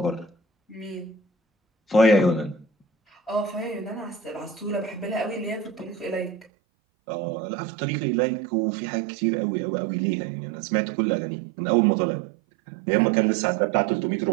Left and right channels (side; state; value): left; drops out; at 6.5 s